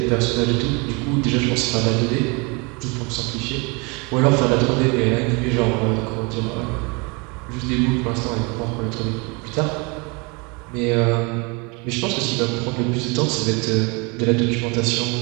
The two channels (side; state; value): left; quieter; 29.6 dB